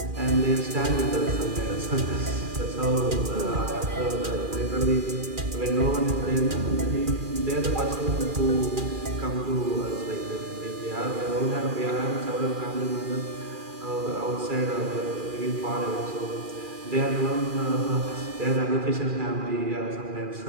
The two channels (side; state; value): left; late; 2.4 ms